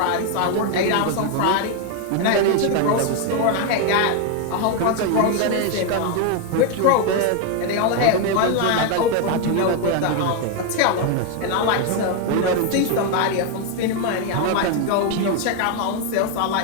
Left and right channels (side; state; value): both; different; correlation 0.01